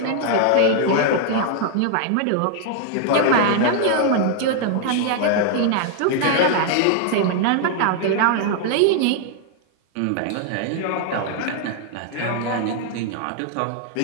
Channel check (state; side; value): different; both; correlation 0.00